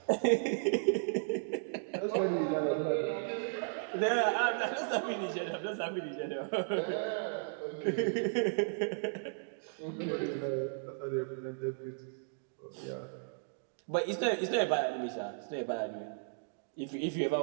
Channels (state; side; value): silent; left; digital silence